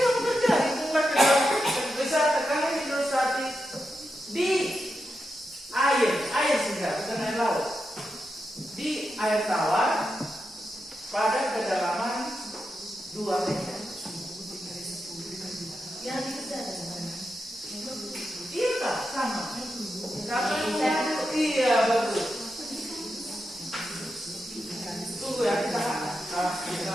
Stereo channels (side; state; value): both; normal; correlation 0.87